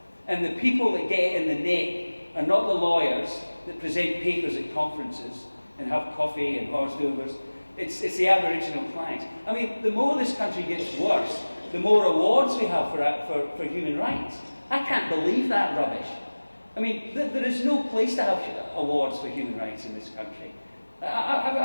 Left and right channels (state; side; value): inverted; both; correlation -1.00